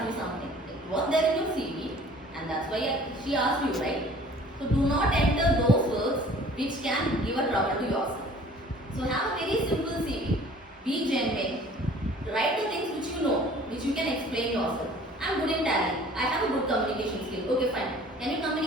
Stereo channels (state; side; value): normal; both; correlation 0.50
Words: you something. It was there in your CV, and that's why she asked you, right? So do not enter those words which can give a trouble to yourself. So have a very simple CV. Be genuine. Write the things which you know, which you can explain yourself. I'm good in Tally. I have a good communication skill. Okay, fine. Can you